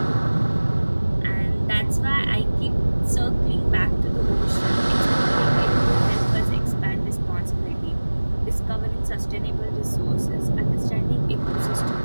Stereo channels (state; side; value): inverted; both; correlation -1.00